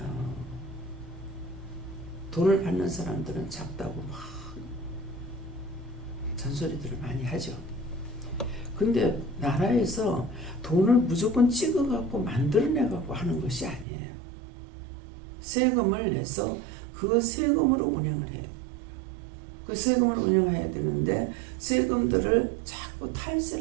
돈을 받는 사람들은 작다고 막 잔소리들을 많이 하죠. 근데 나라에서 돈을 무조건 찍어갖고 만들어내갖고 하는 것이 아니에요. 세금을 내서 그 세금으로 운영을 해야 돼요. 그 세금을 운영해야 되는데 세금들을 자꾸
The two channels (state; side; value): drops out; left; at 13.9 s